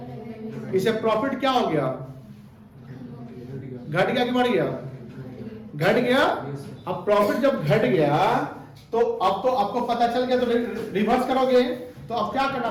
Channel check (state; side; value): identical; both; correlation 1.00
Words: इसे प्रॉफिट क्या हो गया? घट गया कि बढ़ गया? घट गया। अब प्रॉफिट जब घट गया तो अब तो आपको पता चल गया, तो रिवर्स करोगे तो अब क्या करना